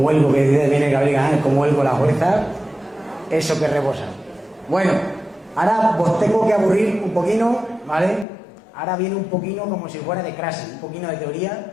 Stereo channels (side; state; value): right; drops out; at 8.2 s